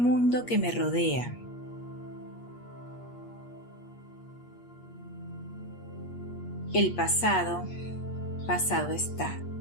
que me rodea. El pasado está.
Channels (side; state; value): right; late; 8.4 ms